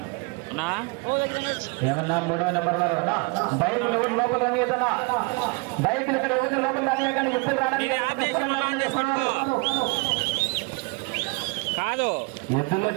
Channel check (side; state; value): left; quieter; 29.6 dB